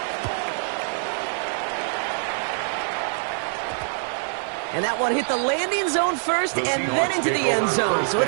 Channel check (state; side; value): silent; left; digital silence